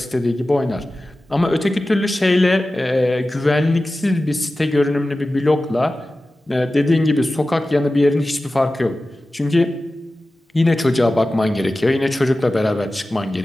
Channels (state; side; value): normal; both; correlation 0.95